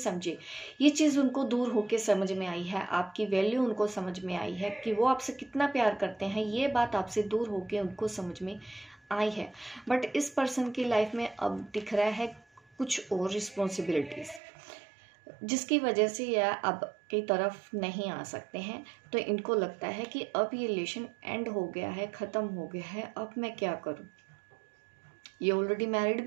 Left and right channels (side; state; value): left; drops out; at 14.4 s